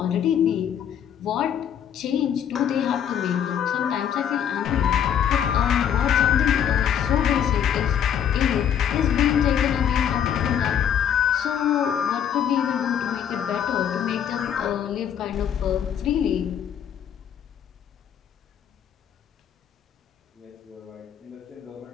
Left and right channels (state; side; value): quieter; right; 9.0 dB